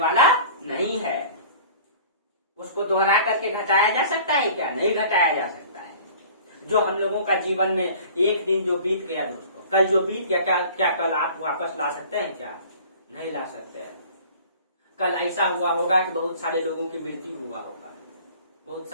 नहीं है। उसको दोहरा करके घटाया जा सकता है क्या? नहीं घटाया जा सकता। जो हम लोगों का जीवन में एक दिन जो बीत गया दोस्तों, कल जो बीत गया, क्या कल आप वापस ला सकते हैं? क्या नहीं ला सकते हैं। कल ऐसा हुआ होगा कि बहुत सारे लोगों की मृत्यु हुआ होगा, बहुत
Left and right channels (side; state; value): both; inverted; correlation -0.45